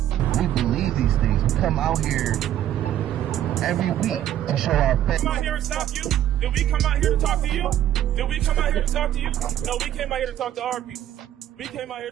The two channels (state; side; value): quieter; left; 11.9 dB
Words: We believe these things. We come out here every week to show our faith. Come out here and stop you? Did we come out here to talk to you? Did we come out here to talk to you? No, we came out here to talk to our people. We came out here